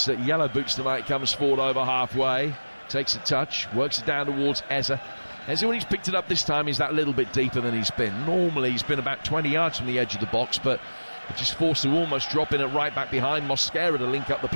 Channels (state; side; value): inverted; both; correlation -1.00